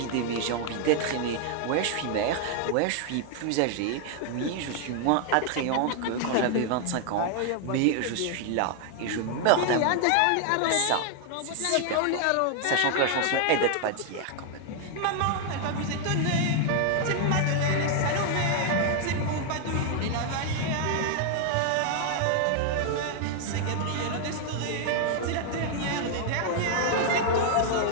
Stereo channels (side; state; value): both; different; correlation 0.00